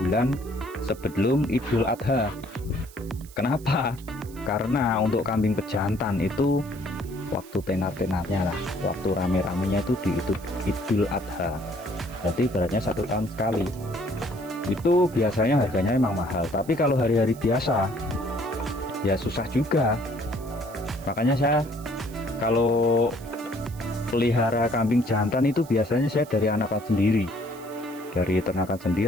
sebelum Idul Adha. Kenapa? Karena untuk kambing pejantan itu waktu tenar-tenarnya lah, waktu rame-ramenya itu di Idul Adha. Berarti ibaratnya 1 tahun sekali. Itu biasanya harganya emang mahal. Tapi kalau hari-hari biasa ya susah juga. Makanya saya kalau pelihara kambing jantan itu biasanya saya dari anakan sendiri, dari ternakan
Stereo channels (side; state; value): right; noise; hiss, 21 dB below the sound